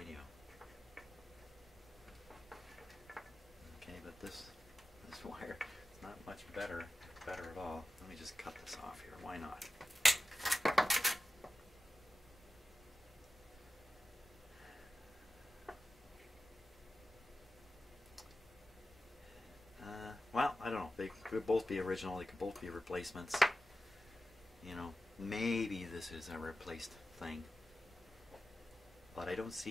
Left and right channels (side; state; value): both; normal; correlation 0.93